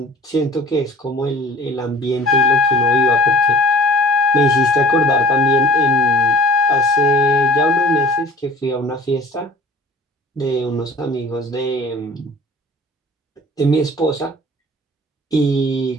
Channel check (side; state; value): both; normal; correlation 0.46